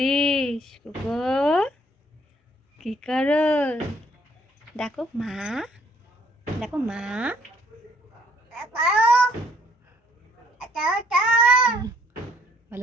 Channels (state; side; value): normal; both; correlation 0.65